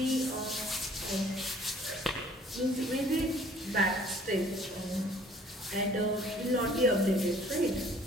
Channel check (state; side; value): normal; both; correlation 0.55